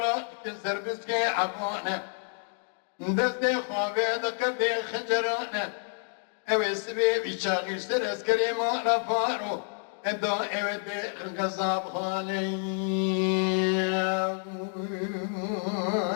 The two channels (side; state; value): right; silent; 59 dB below the other